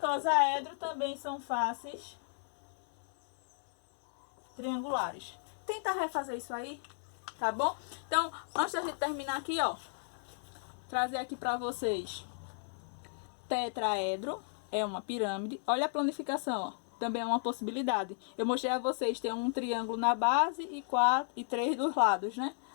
também são faces triangulares. Tenta refazer isso aí, tá bom? Então, antes da gente terminar aqui, ó, trazer aqui pra vocês tetraedro, é uma pirâmide. Olha a planificação, ó. Também é uma possibilidade. Eu mostrei a vocês, tem um triângulo na base e 3 dos lados, né?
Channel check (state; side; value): silent; right; digital silence